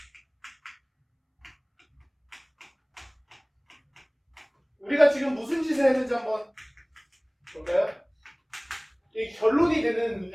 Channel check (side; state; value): both; identical; correlation 1.00